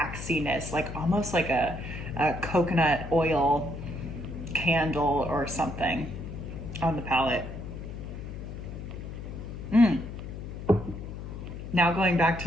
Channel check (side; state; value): left; noise; hum, 9 dB below the sound